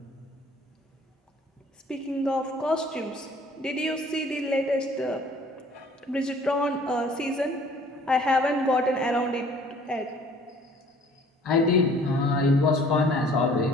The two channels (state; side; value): normal; both; correlation 0.54